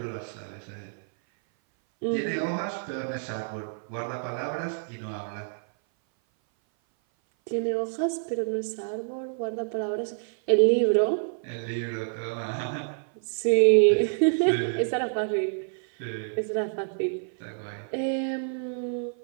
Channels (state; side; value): silent; left; 57 dB below the other